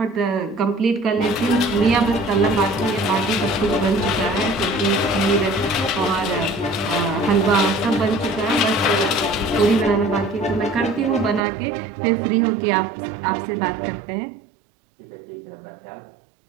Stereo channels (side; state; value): left; drops out; at 11.4 s